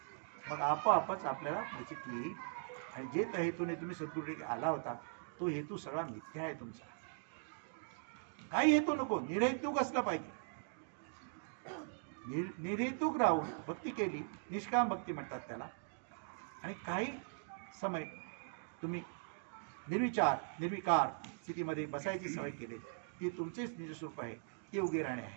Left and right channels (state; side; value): silent; left; digital silence